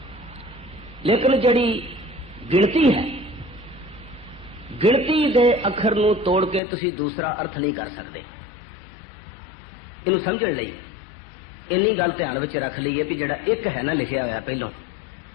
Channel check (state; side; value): drops out; right; at 6.6 s